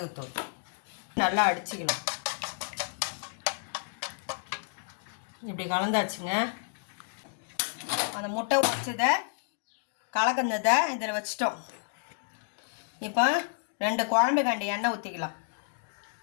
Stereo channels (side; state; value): right; silent; digital silence